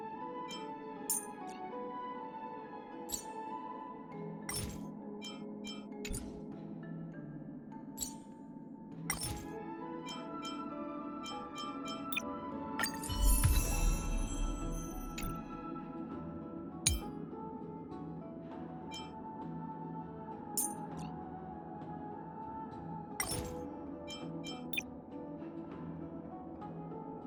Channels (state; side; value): identical; both; correlation 1.00